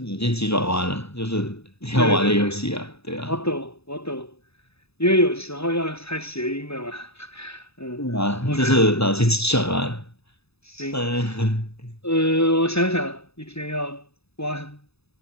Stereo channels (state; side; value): late; right; 0.79 ms